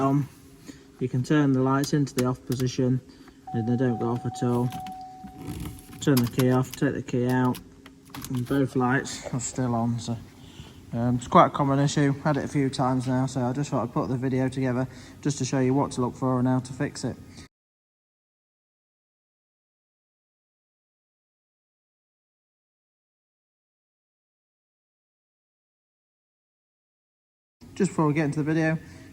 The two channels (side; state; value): both; identical; correlation 1.00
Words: you can turn the lights into the off position and they don't go off at all. Turn the key off, take the key out, and both lights are still on. So it's quite a common issue. Had it a few times now, so I just thought I'd put the video together just to show you what to look for and how to fix it. Just before we get into the video,